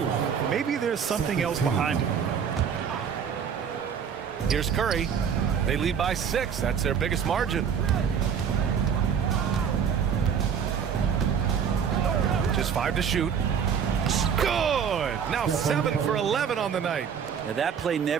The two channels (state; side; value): quieter; left; 7.4 dB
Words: Maybe there's something else behind it. Here's Curry. They lead by 6. That's their biggest margin. Just 5 to shoot. Good! Now 7 for 11 on the night. Now that play